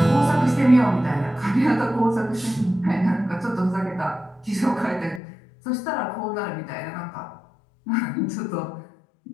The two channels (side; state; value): right; drops out; at 5.2 s